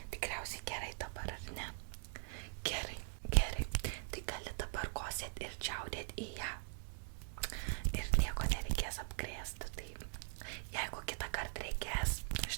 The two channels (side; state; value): left; silent; digital silence